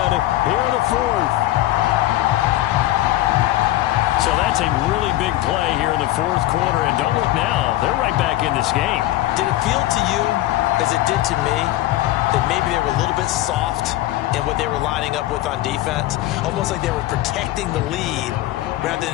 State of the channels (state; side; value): quieter; right; 15.6 dB